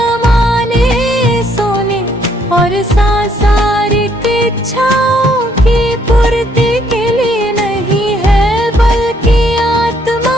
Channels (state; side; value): normal; both; correlation 0.68